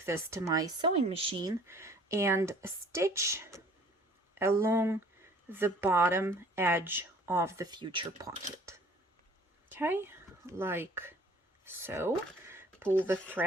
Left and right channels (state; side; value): normal; both; correlation 0.53